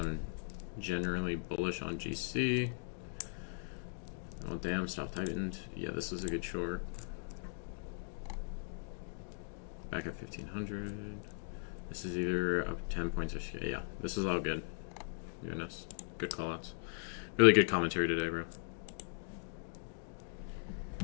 generally bullish on GC. Oh damn, stop tightened. Yeah, this was a good short. Back at 1500. This is either up 10 points or yeah. This is all good. Goodness, good callouts. Really good commentary today, bro.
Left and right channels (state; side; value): silent; right; digital silence